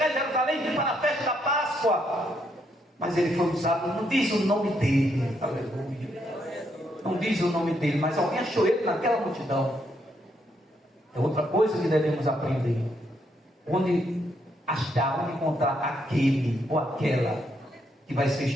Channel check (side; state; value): both; normal; correlation 0.76